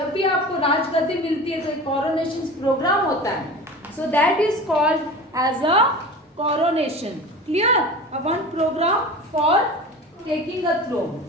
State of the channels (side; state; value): both; normal; correlation 0.34